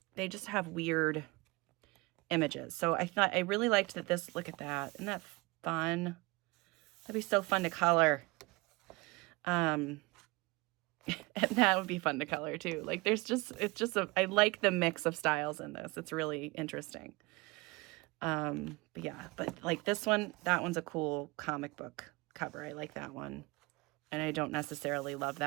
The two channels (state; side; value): quieter; left; 24.4 dB